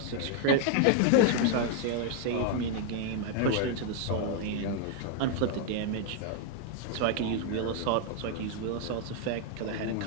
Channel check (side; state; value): both; different; correlation 0.00